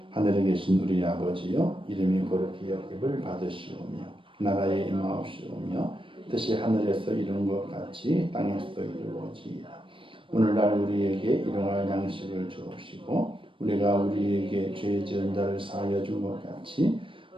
하늘에 계신 우리 아버지여, 이름이 거룩히 여김을 받으시오며 나라에 임하옵시오며 뜻이 하늘에서 이룬 것 같이 땅에서도 이루어지이다. 오늘날 우리에게 일용할 양식을 주옵시고 우리가 우리에게 죄 지은 자를 사하여 준 것 같이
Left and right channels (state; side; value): late; left; 0.25 ms